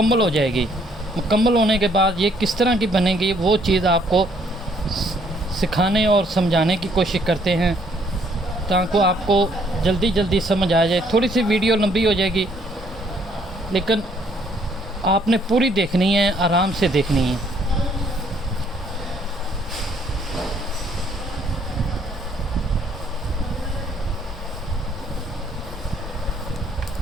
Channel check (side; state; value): both; normal; correlation 0.65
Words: हो जाएगी। मुकम्मल होने के बाद ये किस तरह की बनेगी वो चीज़ आपको सिखाने और समझाने की कोशिश करते हैं, ताकि आपको जल्दी जल्दी समझ आ जाए। थोड़ी सी वीडियो लंबी हो जाएगी, लेकिन आपने पूरी देखनी है, आराम से देखनी है।